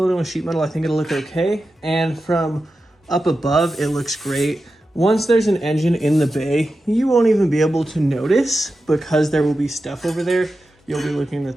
it in with sheet metal, I think it'll look okay. And from up above, it looks great. Once there's an engine in the bay, you won't even be able to notice because there will be stuff over there. You'll be looking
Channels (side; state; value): both; normal; correlation 0.91